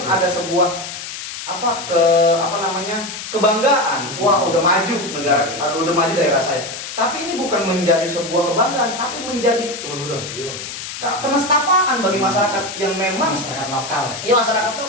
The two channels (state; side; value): noise; left; hiss, 9 dB below the sound